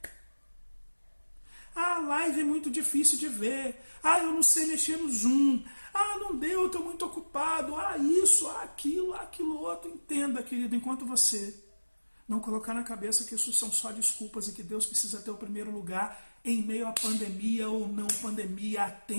A live é muito difícil de ver. Eu não sei mexer no Zoom. Não deu, eu estou muito ocupado. Isso, aquilo outro. Entenda, querido, enquanto você não colocar na cabeça que isso são só desculpas e que Deus precisa ter o primeiro lugar em meio à pandemia ou não pandemia, a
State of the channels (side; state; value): both; inverted; correlation -1.00